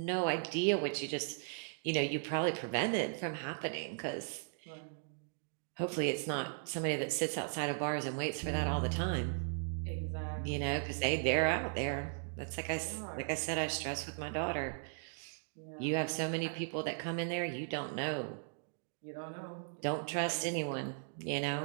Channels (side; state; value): left; silent; digital silence